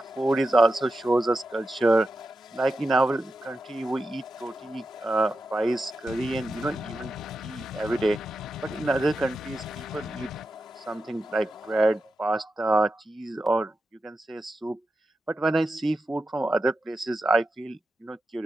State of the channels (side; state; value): both; normal; correlation 0.90